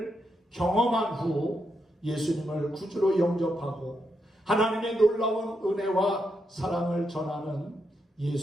경험한 후 예수님을 구주로 영접하고 하나님의 놀라운 은혜와 사랑을 전하는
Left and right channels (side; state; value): both; normal; correlation 0.82